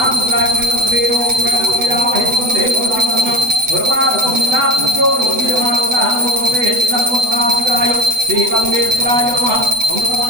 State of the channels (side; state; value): left; late; 8.0 ms